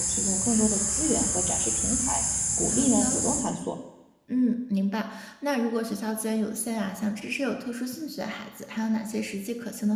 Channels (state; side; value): identical; both; correlation 1.00